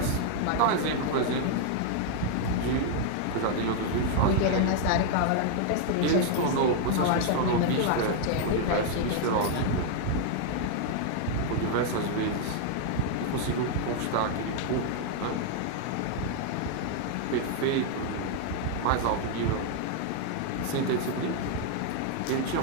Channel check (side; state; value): both; different; correlation 0.00